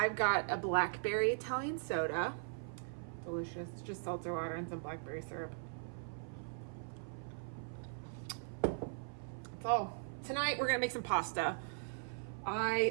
got a blackberry Italian soda. Delicious. Just seltzer water and some blackberry syrup. That's all. Tonight we're gonna make some pasta.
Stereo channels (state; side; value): silent; left; 51 dB below the other